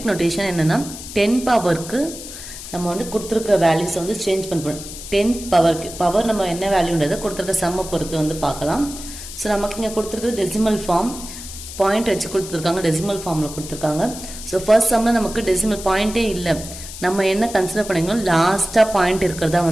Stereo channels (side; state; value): left; noise; hiss, 12 dB below the sound